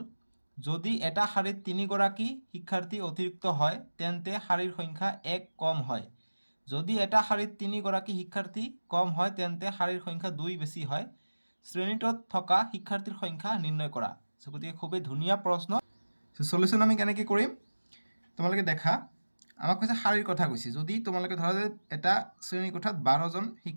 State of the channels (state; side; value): inverted; both; correlation -1.00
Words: যদি এটা শাৰীত 3গৰাকী শিক্ষাৰ্থী অতিৰিক্ত হয় তেন্তে শাৰীৰ সংখ্যা 1 কম হয়। যদি এটা শাৰীত 3গৰাকী শিক্ষাৰ্থী কম হয় তেন্তে শাৰীৰ সংখ্যা 2 বেছি হয়। শ্ৰেণীটোত থকা শিক্ষাৰ্থীৰ সংখ্যা নিৰ্ণয় কৰা। গতিকে খুবেই ধুনীয়া প্ৰশ্ন। সলিউশ্যন আমি কেনেকৈ কৰিম তোমালোকে দেখা। আমাক কৈছে শাৰীৰ কথা কৈছে। যদি তোমালোকে ধৰা যে এটা শ্ৰেণী কোঠাত 12জন